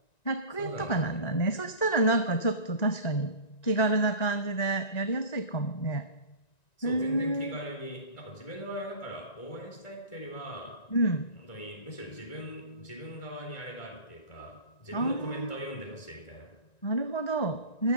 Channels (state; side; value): late; right; 1.9 ms